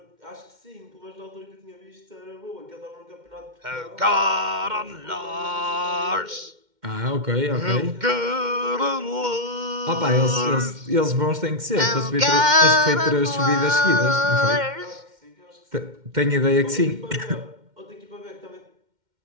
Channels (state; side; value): late; left; 2.1 ms